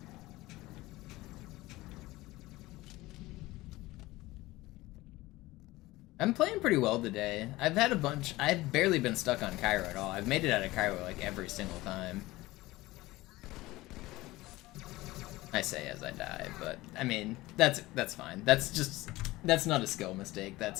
I'm playing pretty well today. I've had a bunch. I've barely been stuck on Cairo at all. I've made it out of Cairo like every single time. I say as I die, but I mean that's fine. That's not a skill mistake.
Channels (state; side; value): quieter; right; 19.0 dB